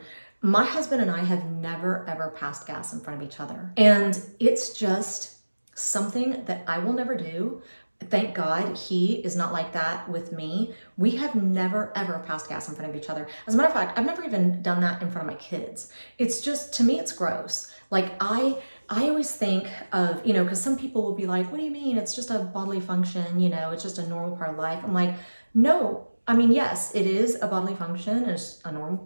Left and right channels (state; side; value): inverted; both; correlation -1.00